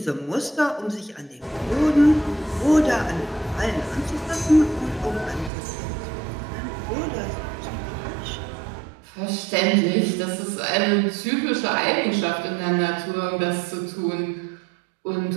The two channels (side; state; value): left; drops out; at 5.5 s